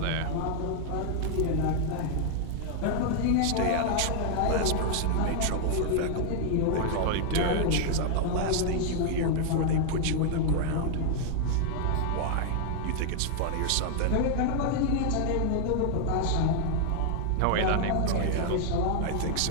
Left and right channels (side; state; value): both; different; correlation 0.00